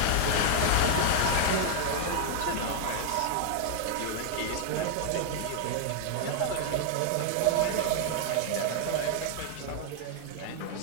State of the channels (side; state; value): both; different; correlation 0.00